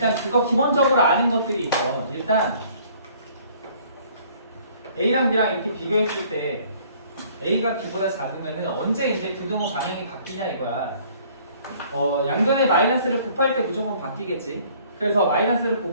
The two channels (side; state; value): both; inverted; correlation -0.57